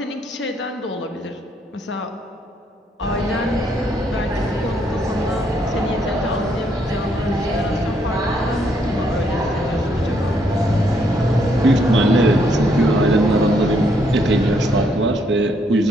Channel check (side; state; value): both; normal; correlation 0.72